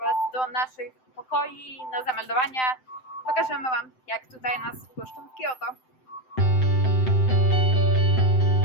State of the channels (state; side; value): late; right; 7.8 ms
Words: do naszych pokoi na zameldowania. Pokażemy Wam, jak tutaj nas wpuszczą w Kyoto.